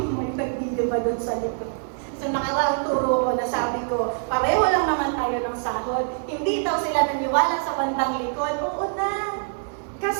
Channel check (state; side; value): silent; left; 60 dB below the other